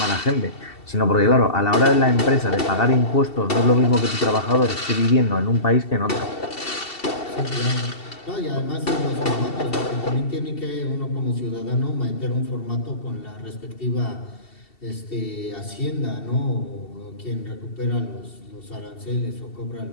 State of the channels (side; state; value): right; late; 2.7 ms